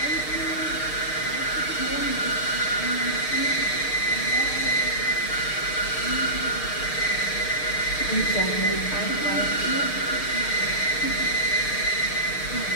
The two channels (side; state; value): right; late; 6.5 ms